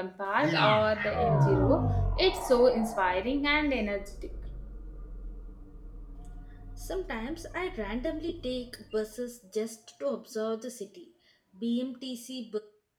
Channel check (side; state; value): both; identical; correlation 1.00